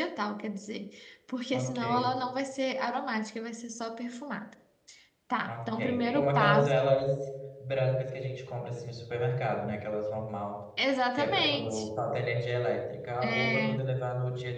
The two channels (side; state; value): both; identical; correlation 1.00